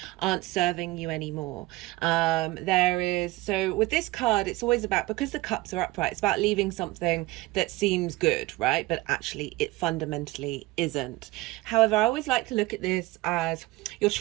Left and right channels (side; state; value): left; quieter; 19.7 dB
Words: aren't serving you anymore. So with this card, it's always about, because the cups are upright, it's about leaving something that seems good, right? But actually it fundamentally isn't. However, I always like to look at this as your